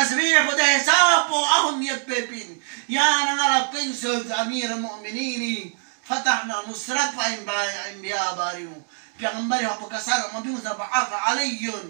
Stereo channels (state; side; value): silent; left; 63 dB below the other